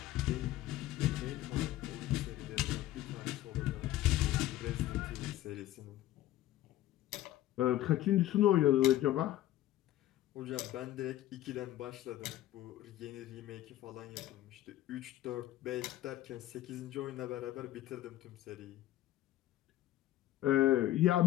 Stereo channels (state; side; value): quieter; right; 14.1 dB